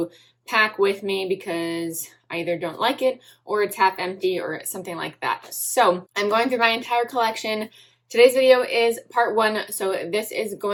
pack with me because I either don't like it or it's half empty or something like that. So I'm going through my entire collection. Today's video is part one, so this is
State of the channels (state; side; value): identical; both; correlation 1.00